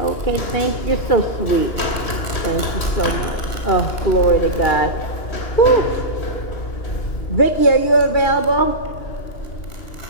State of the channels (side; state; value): right; late; 2.9 ms